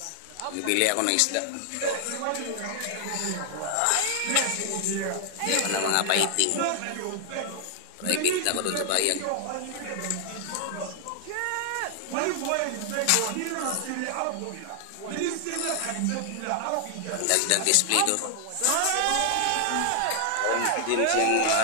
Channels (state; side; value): different; both; correlation 0.00